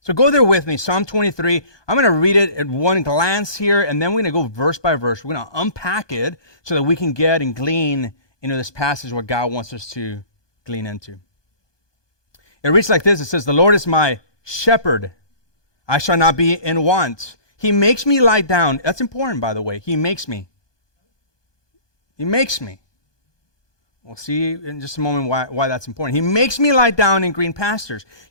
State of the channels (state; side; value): late; right; 1.2 ms